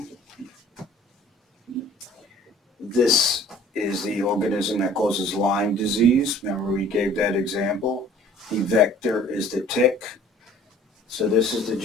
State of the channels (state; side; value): normal; both; correlation 0.51